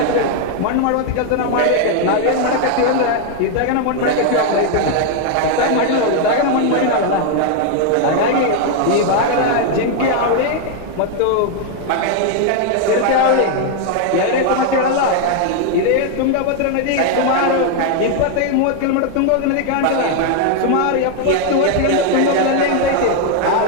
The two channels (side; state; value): both; different; correlation 0.00